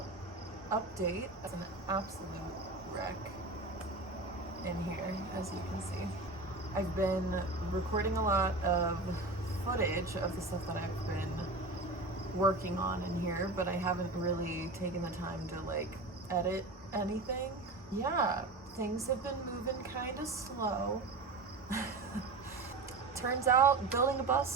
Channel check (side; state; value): left; quieter; 3.3 dB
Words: update. It's an absolute wreck in here, as you can see. I've been recording a lot of footage of the stuff that I've been working on in here, but I haven't really taken the time to like edit anything. Yeah, things have been moving kind of slow. Turns out building a